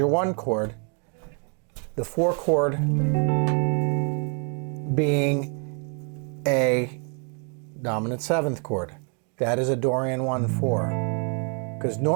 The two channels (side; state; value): left; quieter; 39.3 dB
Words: one chord, the four chord being a dominant seventh chord. That is a Dorian I-4. Because